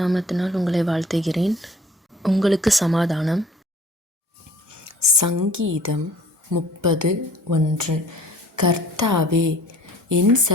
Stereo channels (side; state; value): both; normal; correlation 0.51